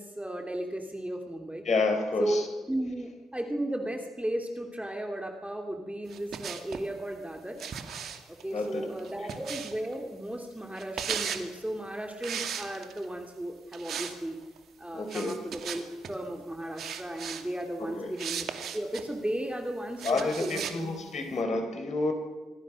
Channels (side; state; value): both; normal; correlation 0.82